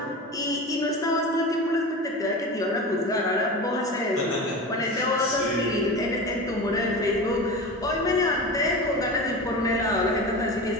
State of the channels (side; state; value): both; normal; correlation 0.29